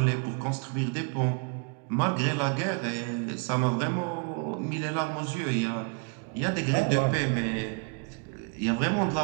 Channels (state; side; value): quieter; left; 37.4 dB